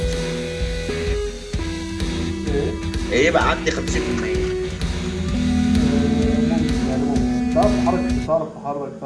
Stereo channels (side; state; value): both; identical; correlation 1.00